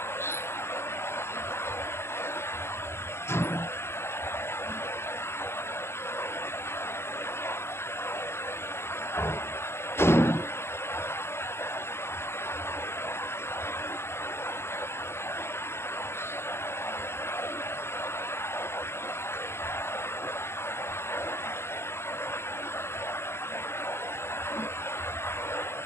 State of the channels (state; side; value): late; right; 0.12 ms